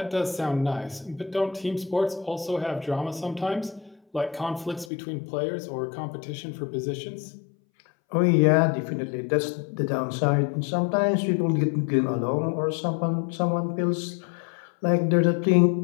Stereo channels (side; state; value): right; drops out; at 4.9 s